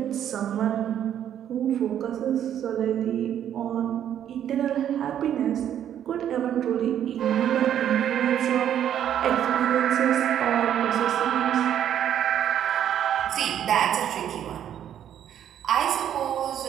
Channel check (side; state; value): left; quieter; 10.1 dB